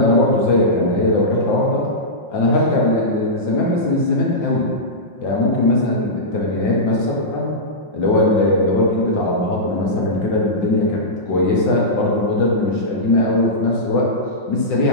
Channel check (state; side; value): late; right; 5.6 ms